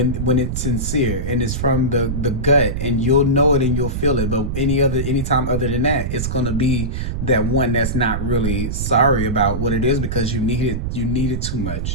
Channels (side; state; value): right; noise; rumble, 2 dB below the sound